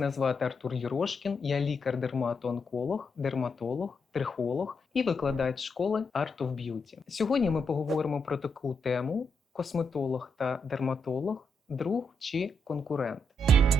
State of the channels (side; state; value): both; normal; correlation 0.80